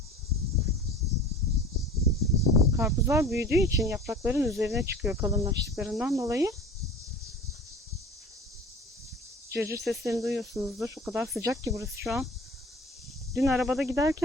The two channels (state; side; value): normal; both; correlation 0.41